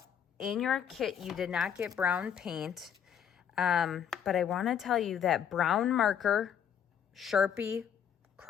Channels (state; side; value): quieter; right; 8.6 dB